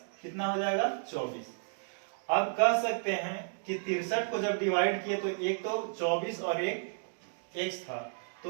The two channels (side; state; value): left; silent; digital silence